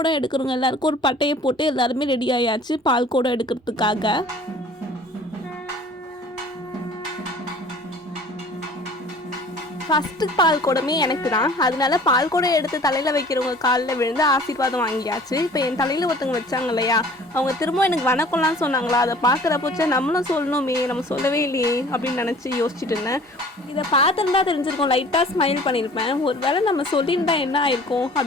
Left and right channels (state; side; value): normal; both; correlation 0.49